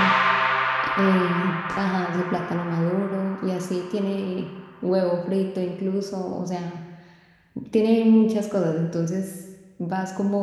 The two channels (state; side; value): identical; both; correlation 1.00